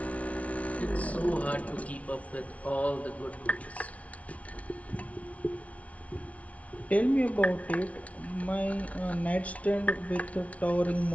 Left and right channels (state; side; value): late; right; 0.066 ms